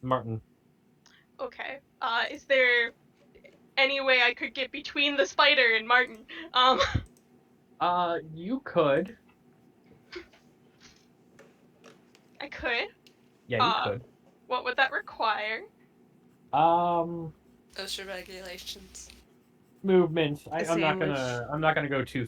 Martin. Okay. Is there any way I could get between the spider and Martin? You could. I could. Yeah, you could. What would that require? OSHA regulations. Movement. A I'm not sandwich. gonna go too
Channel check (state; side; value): identical; both; correlation 1.00